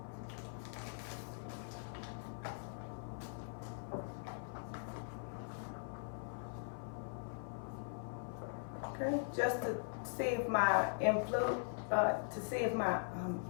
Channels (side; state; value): right; silent; 50 dB below the other